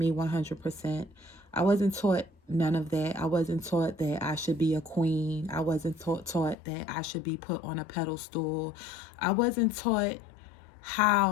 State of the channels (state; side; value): drops out; right; at 6.6 s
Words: 100%. I wasn't taught none of that. I wasn't taught that I should be a queen. I wasn't taught that I should be put on a pedestal. I wasn't taught